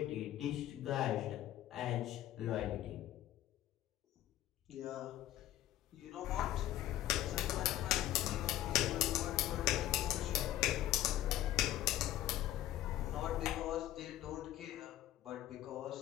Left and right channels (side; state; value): right; quieter; 13.2 dB